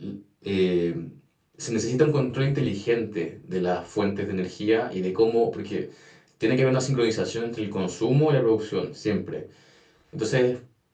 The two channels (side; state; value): both; identical; correlation 1.00